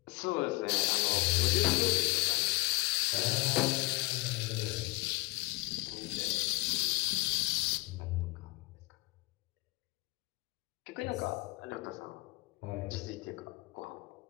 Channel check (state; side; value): quieter; right; 23.7 dB